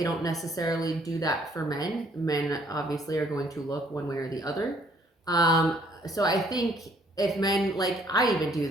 don't necessarily do that for men. Men obviously are going to look one way or the other. So I think if men, like, I even do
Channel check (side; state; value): both; normal; correlation 0.63